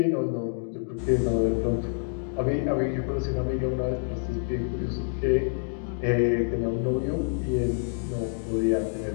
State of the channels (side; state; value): right; silent; digital silence